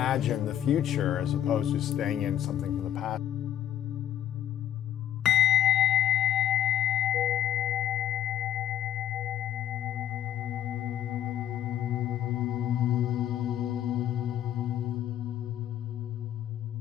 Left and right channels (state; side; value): quieter; right; 11.2 dB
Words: the future as opposed to staying in something from the past.